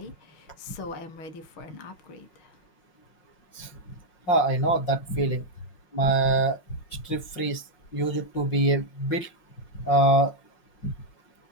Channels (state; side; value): late; right; 5.6 ms